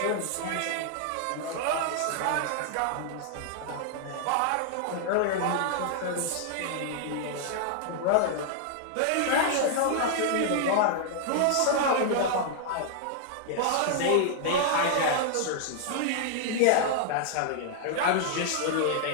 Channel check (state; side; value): different; both; correlation -0.01